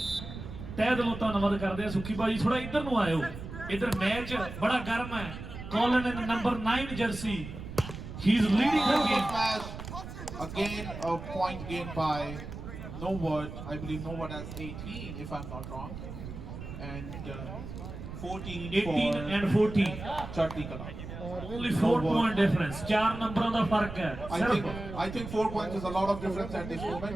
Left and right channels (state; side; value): noise; right; rumble, 10 dB below the sound